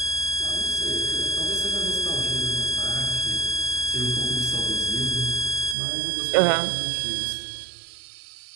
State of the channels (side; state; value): left; drops out; at 5.8 s